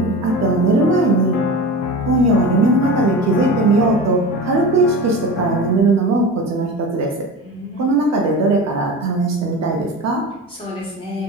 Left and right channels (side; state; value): both; normal; correlation 0.30